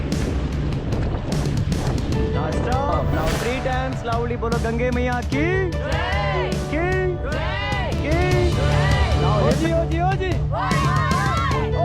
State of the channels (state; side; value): identical; both; correlation 1.00